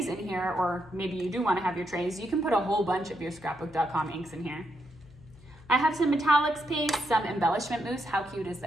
in here, or maybe you do want to have your trays, you can put a whole bunch of your Scrapbook.com inks in here. I have some metallics paste, some embellishment mousse. How cute is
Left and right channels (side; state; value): left; noise; hum, 23 dB below the sound